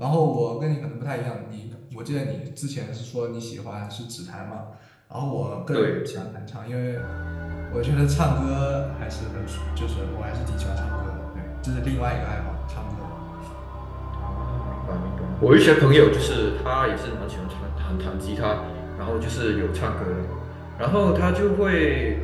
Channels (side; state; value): both; identical; correlation 1.00